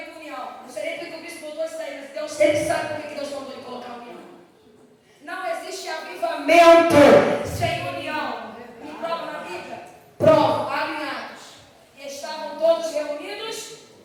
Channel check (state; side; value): identical; both; correlation 1.00